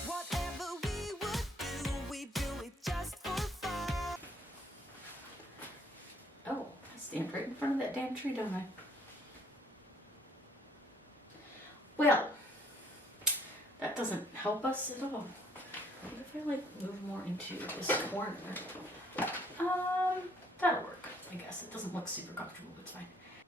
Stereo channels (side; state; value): both; normal; correlation 0.63